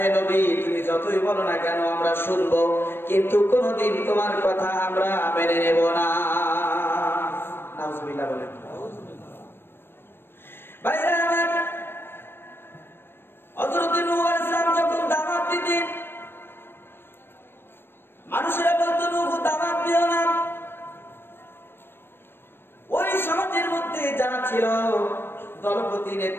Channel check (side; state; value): right; late; 0.10 ms